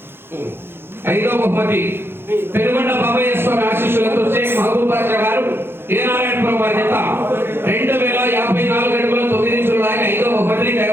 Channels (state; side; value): late; left; 0.11 ms